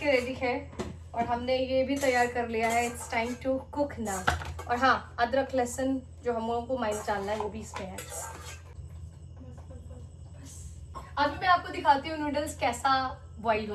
रेडी है और हमने ये भी तैयार कर लिया है। इट्स टाइम टू कुक ना। और हाँ, अदरक लहसुन जो हम लोगों को माइंस डालना है वो भी इसमें है। अभी मैं आपको दिखाती हूँ नूडल्स कैसा बॉईल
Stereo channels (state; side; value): identical; both; correlation 1.00